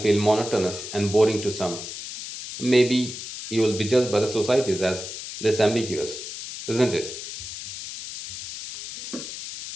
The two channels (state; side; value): noise; left; hiss, 9 dB below the sound